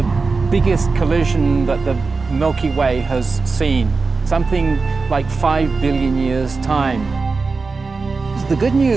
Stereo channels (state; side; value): quieter; left; 4.2 dB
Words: biggest collision that the Milky Way has seen, something like 5 billion years' time. The good